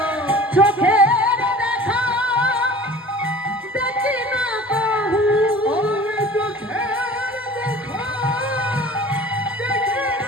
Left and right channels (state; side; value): normal; both; correlation 0.43